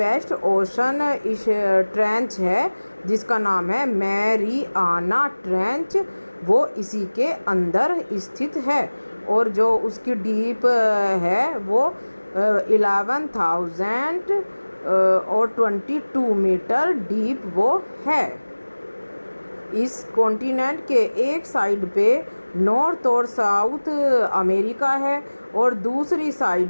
ओशन इस ट्रेंच है जिसका नाम है मैरियाना ट्रेंच, वो इसी के अंदर स्थित है और जो उसकी डीप है वो 11,000 और 22 मीटर डीप वो है। इस कॉन्टिनेंट के एक साइड पे नॉर्थ और साउथ अमेरिका है और दूसरी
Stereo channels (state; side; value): inverted; both; correlation -1.00